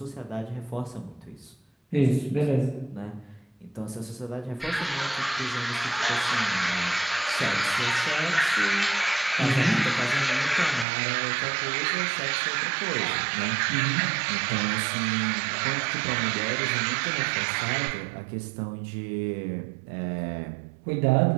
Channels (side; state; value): left; drops out; at 10.9 s